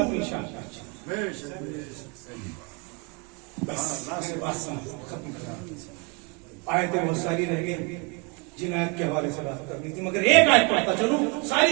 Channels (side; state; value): left; quieter; 31.1 dB